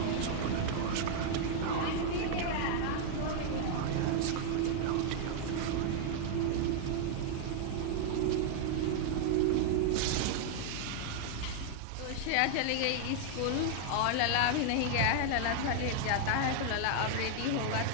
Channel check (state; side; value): different; both; correlation -0.01